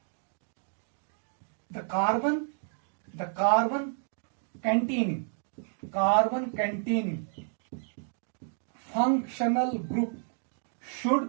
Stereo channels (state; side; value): silent; left; 57 dB below the other